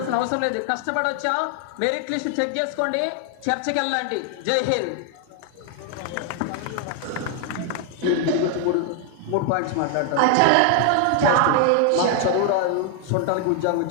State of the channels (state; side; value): different; both; correlation 0.00